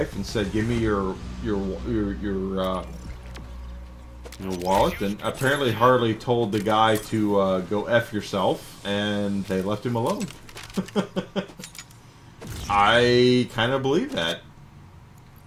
and said, "Give me your wallet." And apparently Harley told the guy to go F yourself, and they left him alone. I kind of believe that.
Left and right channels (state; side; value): identical; both; correlation 1.00